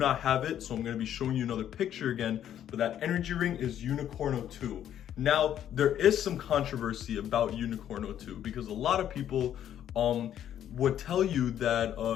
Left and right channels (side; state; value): right; quieter; 10.5 dB